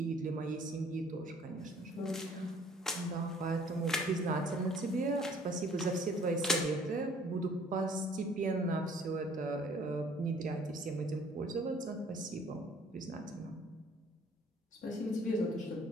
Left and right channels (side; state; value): both; normal; correlation 0.57